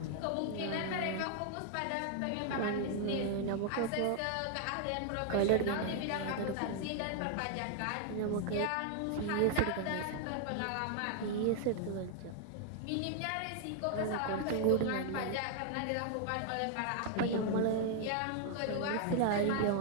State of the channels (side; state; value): both; different; correlation 0.00